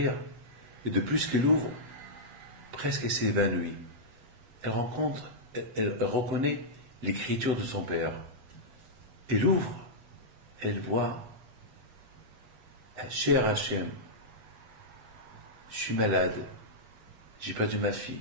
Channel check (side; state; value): left; late; 8.1 ms